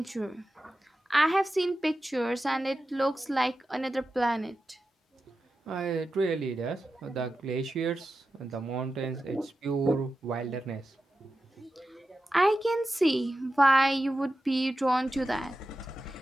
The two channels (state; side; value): normal; both; correlation 0.92